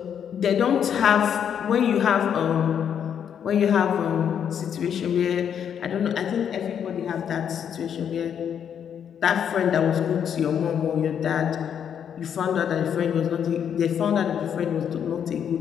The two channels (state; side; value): quieter; right; 8.4 dB